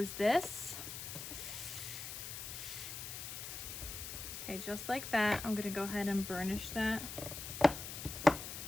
this. Okay, just like that. I'm gonna go ahead and burnish that.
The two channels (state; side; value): noise; left; hiss, 7 dB below the sound